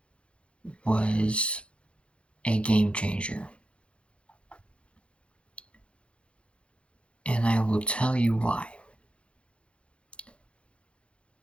was a game changer. And I will tell you why.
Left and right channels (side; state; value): right; late; 0.059 ms